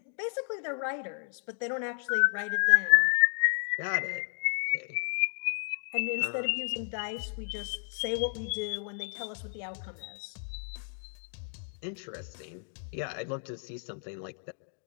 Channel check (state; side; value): silent; right; 55 dB below the other